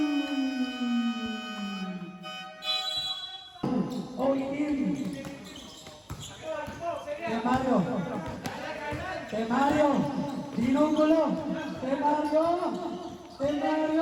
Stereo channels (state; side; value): identical; both; correlation 1.00